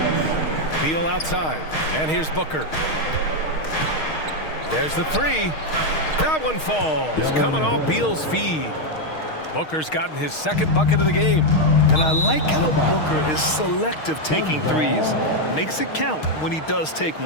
Beal outside. And here's Booker. There's the 3. That one falls. Coming off Beal's feed. Booker's gotten his second bucket of the game. And I like how Booker is selective taking threes. Makes it count when he does take one.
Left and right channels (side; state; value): right; late; 6.4 ms